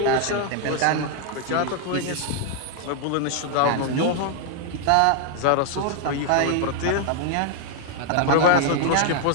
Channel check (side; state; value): both; different; correlation 0.00